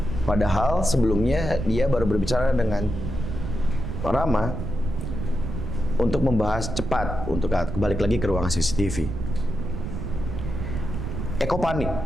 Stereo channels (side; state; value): right; noise; rumble, 5 dB below the sound